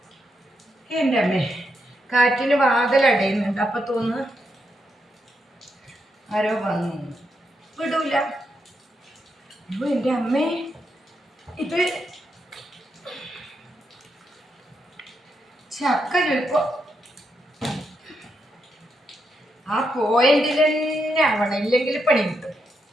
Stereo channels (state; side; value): normal; both; correlation 0.82